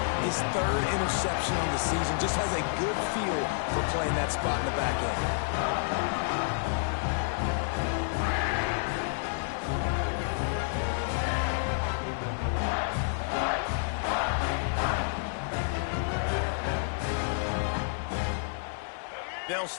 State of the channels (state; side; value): silent; right; digital silence